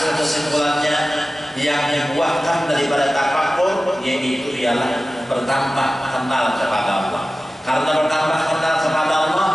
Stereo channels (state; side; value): normal; both; correlation 0.95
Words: kesimpulannya yang dibuahkan daripada tafakkur yaitu ialah bertambah kenal kepada Allah. Karena bertambah kenal kepada Allah,